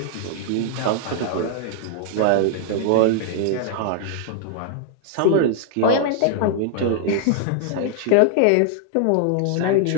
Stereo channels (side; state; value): both; different; correlation -0.01